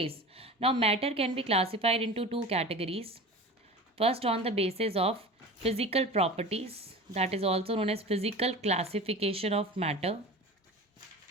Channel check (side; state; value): both; normal; correlation 0.34